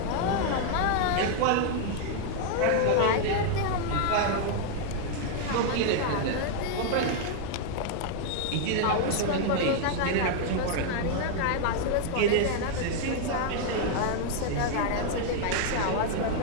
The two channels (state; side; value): different; both; correlation 0.00